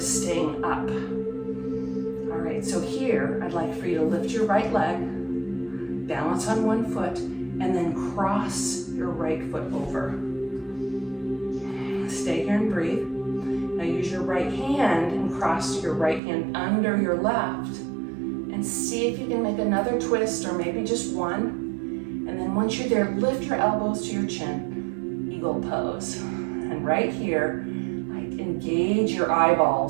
staying up. All right, so here, I'd like for you to lift your right leg, balance on one foot, and then cross your right foot over. Stay here and breathe. Now use your right hand and cross your right hand under your left. And see if you can make another twist or maybe just one. And then once you're there, lift your elbows to your chin. Eagle pose. And right here, like engage your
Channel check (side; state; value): left; drops out; at 16.2 s